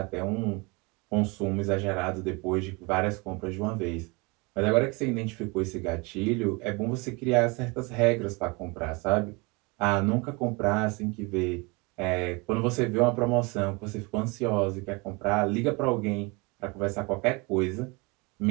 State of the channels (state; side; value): quieter; left; 27.8 dB